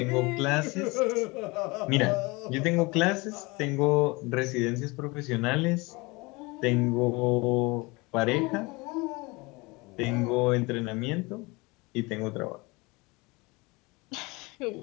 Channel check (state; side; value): quieter; right; 25.1 dB